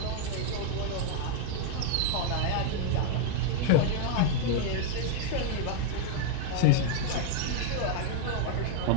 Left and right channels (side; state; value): both; different; correlation 0.00